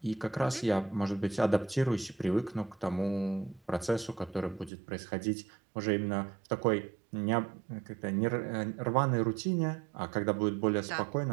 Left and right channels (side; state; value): left; drops out; at 4.7 s